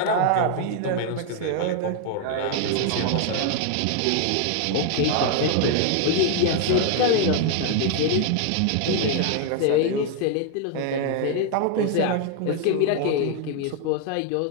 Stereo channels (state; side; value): different; both; correlation 0.00